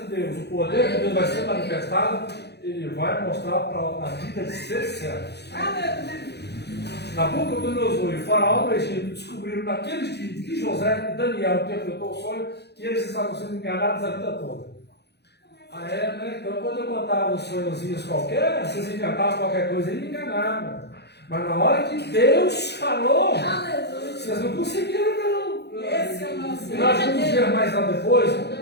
Deus, o poder de Deus vai ser manifestado, ele vai mostrar para a vida de seus servos. Nabucodonosor e o faraó do Egito descobriram naqueles dias que José e Daniel interpretou o sonho, que eles estavam sendo enganados a vida toda. Né? Então, quando eu contava uns sonhozinhos qualquer, vocês inventavam qualquer coisa e me enganavam. Mas na hora que Deus falou, vocês não conseguiram, não. Esse é o nosso. E nós vamos ver mais lá depois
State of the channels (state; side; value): late; right; 0.48 ms